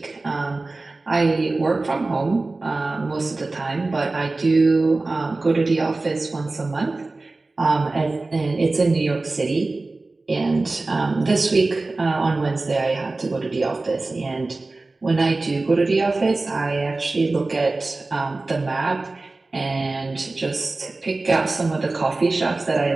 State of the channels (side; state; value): left; quieter; 3.3 dB